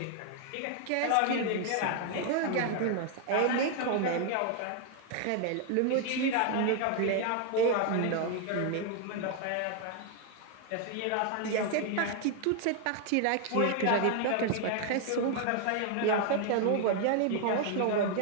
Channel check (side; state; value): both; different; correlation 0.01